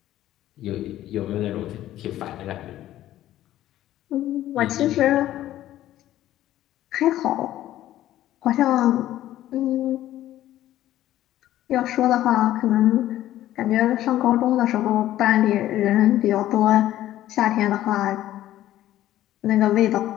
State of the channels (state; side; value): quieter; right; 13.6 dB